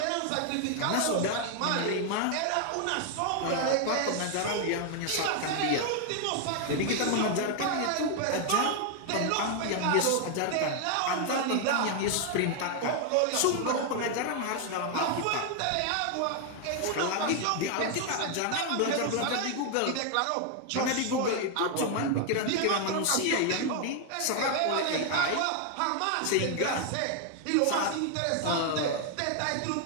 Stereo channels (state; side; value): different; both; correlation 0.00